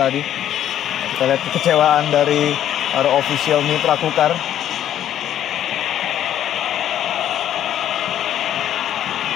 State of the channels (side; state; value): right; quieter; 11.0 dB